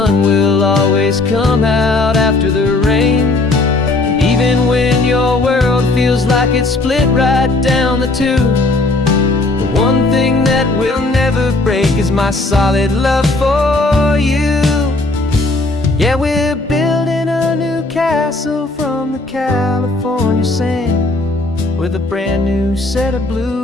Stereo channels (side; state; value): right; quieter; 3.0 dB